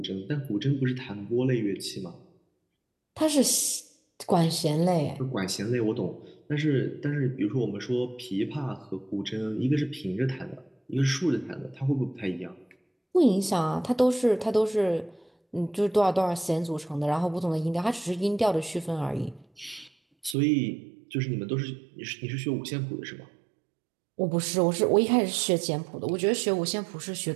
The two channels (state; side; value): drops out; left; at 20.4 s